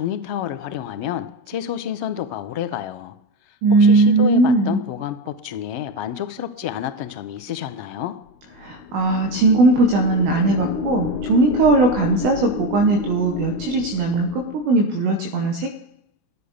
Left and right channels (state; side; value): late; left; 16 ms